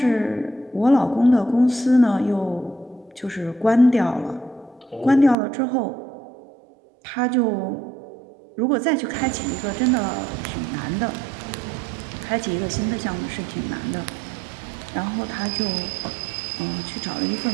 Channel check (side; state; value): left; drops out; at 5.4 s